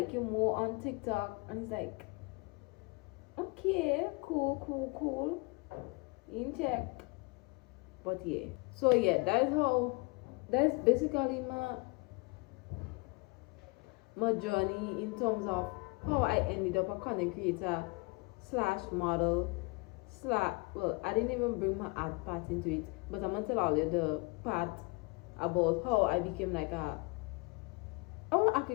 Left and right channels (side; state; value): right; quieter; 28.1 dB